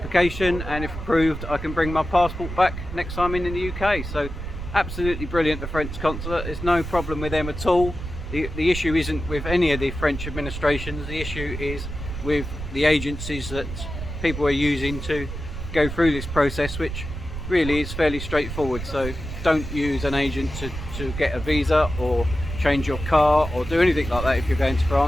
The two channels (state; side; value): noise; right; rumble, 8 dB below the sound